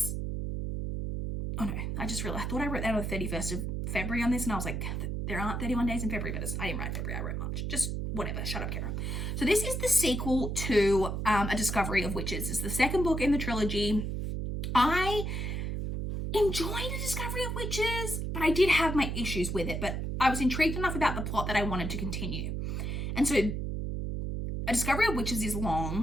oh no, I just realized, I thought I wrote that on the 31st of February on this, and I was like, there aren't 31 days in February, but I didn't write February, I wrote March. Just whatever, shut up, Kara. So this is the sequel to A Discovery of Witches. It's the second book in the trilogy. I enjoyed A Discovery of Witches, but I did have my issues with it, but I was intrigued enough about the plot that I wanted to continue. And so A Discovery of Witches is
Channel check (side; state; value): right; noise; hum, 2 dB below the sound